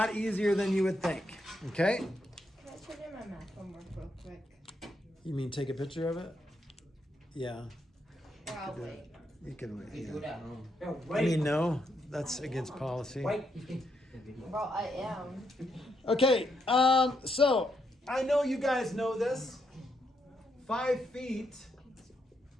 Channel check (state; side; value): normal; both; correlation 0.78